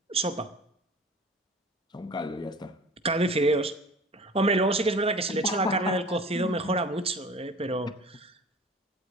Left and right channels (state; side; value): normal; both; correlation 0.42